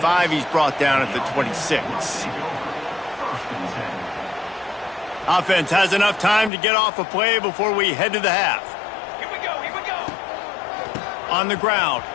He's brought down at the 26. Offense has enough time to get off a play before we head to the half. Here we go. On the ground,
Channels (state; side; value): drops out; right; at 6.5 s